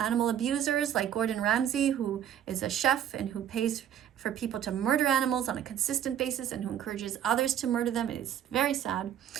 abusers like Gordon Ramsay, who is a chef and who pays for people to murder animals on a consistent basis and who encourages others to murder them. It is very sad.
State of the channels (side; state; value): left; quieter; 10.1 dB